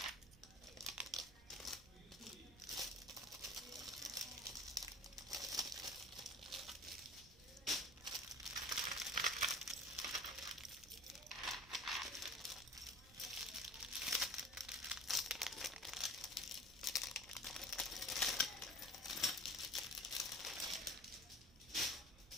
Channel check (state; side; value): noise; right; rumble, 20 dB below the sound